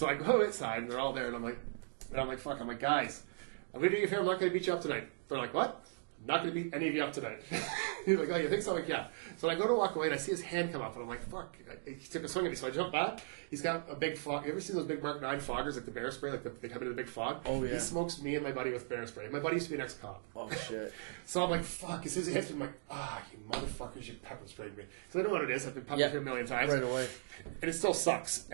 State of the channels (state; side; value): silent; left; digital silence